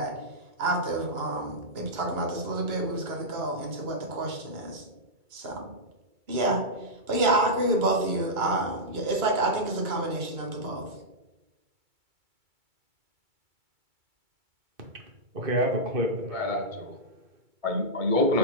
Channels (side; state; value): left; late; 2.3 ms